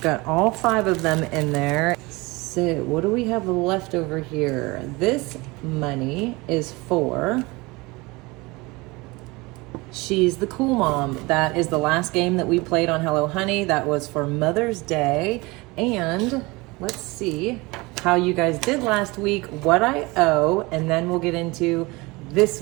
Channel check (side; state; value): left; quieter; 23.8 dB